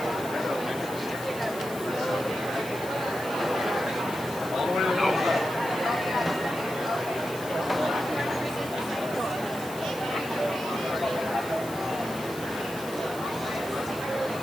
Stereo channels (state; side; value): noise; left; hiss, 14 dB below the sound